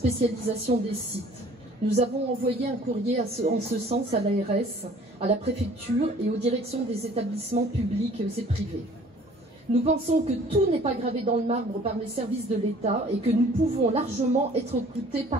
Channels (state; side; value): normal; both; correlation 0.52